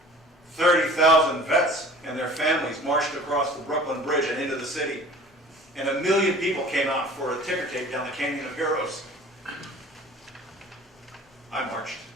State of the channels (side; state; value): both; normal; correlation 0.45